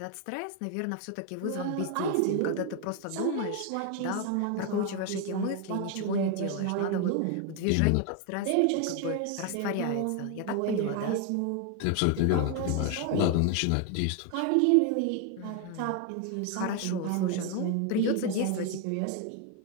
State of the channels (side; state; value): both; different; correlation 0.01